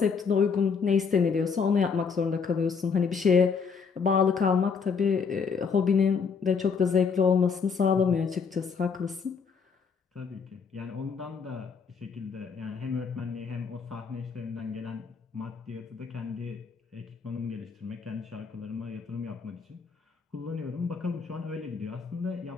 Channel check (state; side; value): quieter; right; 5.7 dB